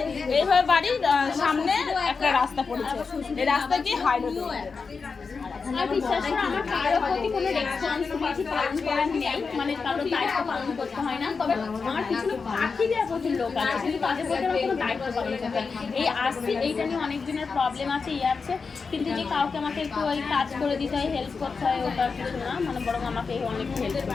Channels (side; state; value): right; quieter; 4.9 dB